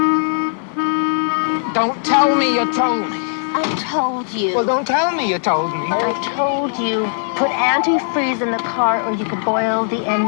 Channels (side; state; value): right; silent; digital silence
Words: Don't tell me you told me. I told you. Well, don't tell me you told me. I told you. Put antifreeze in the car or you could boil the